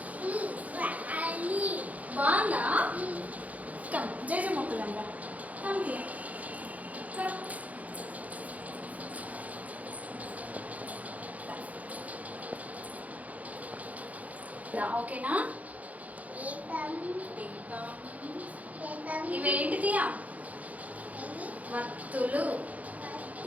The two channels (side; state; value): left; late; 0.073 ms